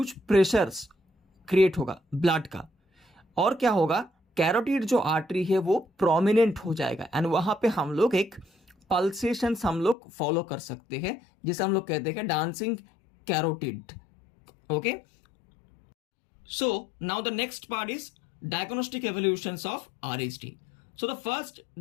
प्रेशर्स क्रिएट होगा ब्लड का, और क्या होगा, कैरोटिड जो आर्टरी है वो प्रोमिनेंट हो जाएगा, एंड वहां पे हम लोग एक पल्सेशंस हम लोग फॉलो कर सकते हैं, जिसे हम लोग कहते हैं dancing carotid, okay? So now the next part is diagnostic evolutions of RHD. So the first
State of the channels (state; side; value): drops out; right; at 10.0 s